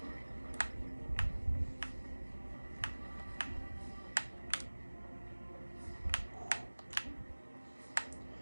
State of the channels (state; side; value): inverted; both; correlation -1.00